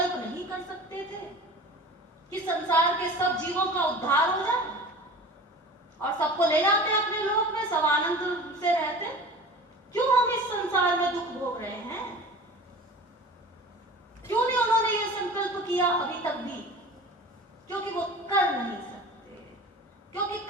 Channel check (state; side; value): normal; both; correlation 0.38